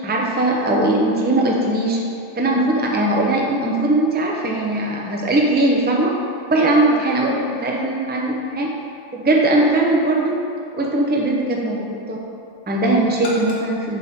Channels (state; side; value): normal; both; correlation 0.20